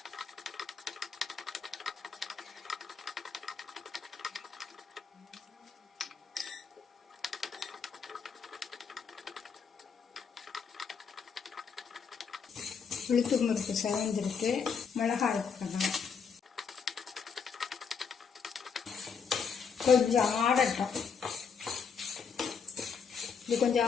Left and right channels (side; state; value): right; quieter; 6.2 dB